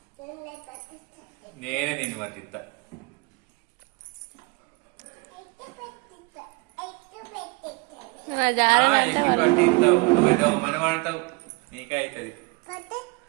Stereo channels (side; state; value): left; quieter; 27.3 dB